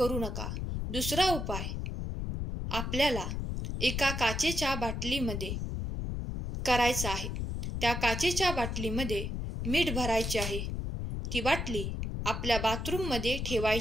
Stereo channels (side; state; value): left; noise; rumble, 3 dB below the sound